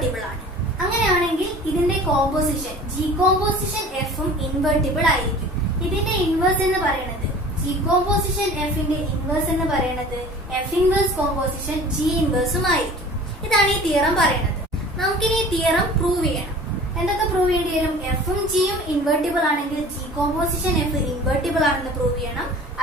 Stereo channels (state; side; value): normal; both; correlation 0.43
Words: ആണ്. അങ്ങനെയാണെങ്കിൽ ഇതിന്റെ composition G composition എഫും ഇൻവെർട്ടിബിൾ ആയിരിക്കും. ഇതിന്റെ ഇൻവേഴ്സ് എന്ന് പറയുന്നത് ജി കോമ്പോസിഷൻ എഫിന്റെ ഇൻവേഴ്സ് എന്ന് പറയുന്നത് എഫ് ഇൻവേഴ്സ് കോമ്പോസിഷൻ ജി ഇൻവേഴ്സും ആയിരിക്കും. ഇതാണ് ഈ തിയറം പറയുന്നത്. നമുക്കിനി ഈ തിയറം പ്രൂവ് ചെയ്യണം. എന്തൊക്കെ പ്രൂവ് ചെയ്യേണ്ടി വരും? എഫും ജിയും ഇൻവെർട്ടിബിൾ ആണെങ്കിൽ ജി കോമ്പോസിഷൻ എഫ് ഇൻവെർട്ടിബിൾ ആണെന്ന് പ്രൂവ് ചെയ്യണം.